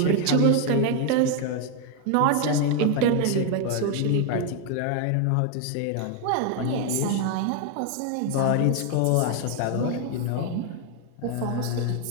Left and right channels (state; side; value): different; both; correlation 0.01